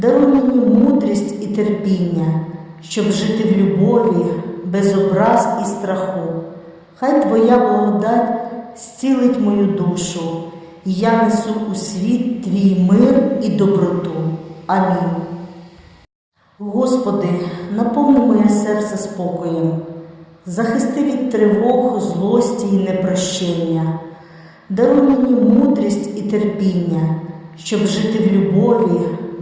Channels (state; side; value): identical; both; correlation 1.00